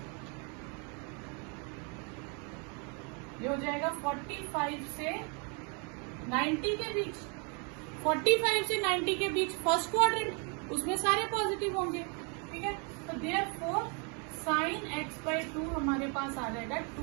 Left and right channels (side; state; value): left; quieter; 35.5 dB